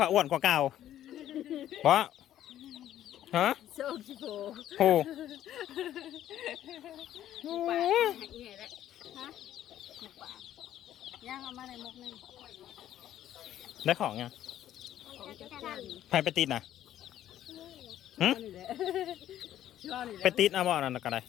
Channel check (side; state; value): right; quieter; 12.0 dB